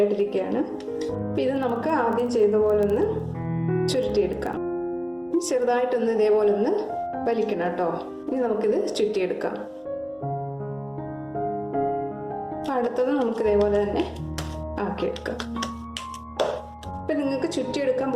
അപ്പം ഇത് നമുക്ക് ആദ്യം ചെയ്ത പോലെ ഒന്ന് ചുരുട്ടിയെടുക്കാം. ചെറുതായിട്ടൊന്ന് ഇതേപോലെ ഒന്ന് വലിക്കണം കേട്ടോ. ഇനി നമുക്കിത് ചുറ്റിയെടുക്കാം. അടുത്തത് നമുക്ക് ഇതേപോലെ തന്നെ ആക്കിയെടുക്കാം. ഇപ്പം നിങ്ങൾക്ക് ചുറ്റിയെടുക്കാൻ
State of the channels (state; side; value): identical; both; correlation 1.00